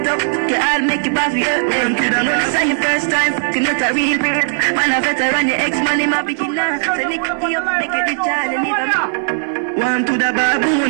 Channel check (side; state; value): left; silent; 58 dB below the other